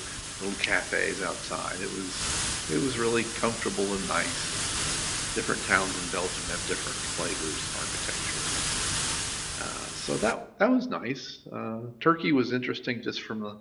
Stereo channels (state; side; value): identical; both; correlation 1.00